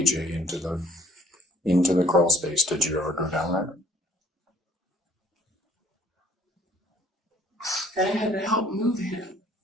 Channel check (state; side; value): normal; both; correlation 0.57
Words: into the crawl space, did you ever go down there? And I had to help move him.